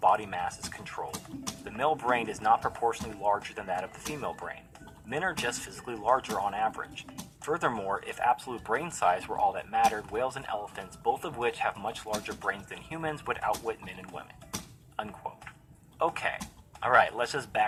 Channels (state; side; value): identical; both; correlation 1.00